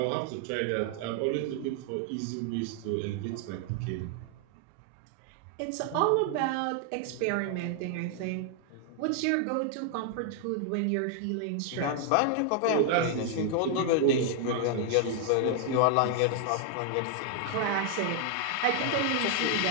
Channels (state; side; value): different; both; correlation 0.00